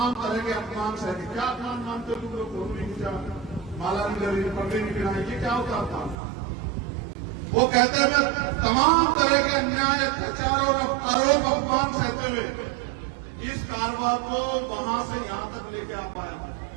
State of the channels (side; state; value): left; drops out; at 6.2 s